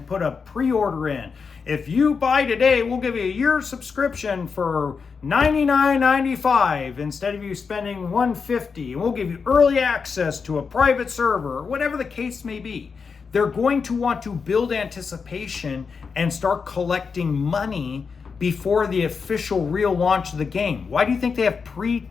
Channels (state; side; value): quieter; right; 5.5 dB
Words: put a pre-order in. If you buy today, we'll give you a year subscription for $99.95 instead of you spending $150. And we'll give you early access to a private server, or whatever the case may be. They're going to want to build anticipation and start collecting money before the official real launch of the game. Why do you think they have